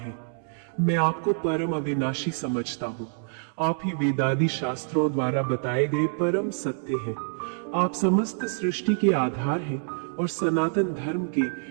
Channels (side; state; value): left; silent; digital silence